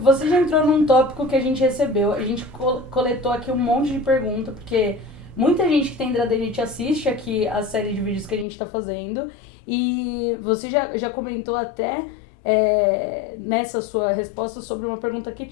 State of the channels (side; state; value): right; drops out; at 8.5 s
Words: você já entrou num tópico que a gente recebeu. A gente coletou aqui um monte de perguntas, porque muita gente que tem hidradenite assiste aqui a série de vídeos que a gente está fazendo. E você já comentou até nessa sua resposta sobre uma pergunta que